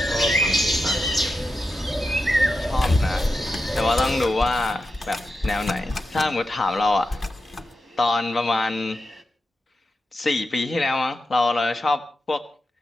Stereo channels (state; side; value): normal; both; correlation 0.89